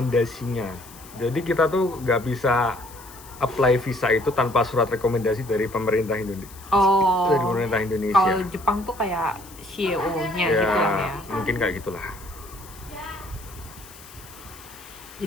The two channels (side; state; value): left; noise; hiss, 20 dB below the sound